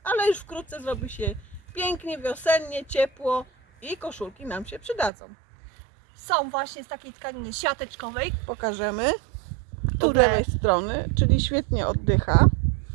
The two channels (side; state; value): left; drops out; at 5.1 s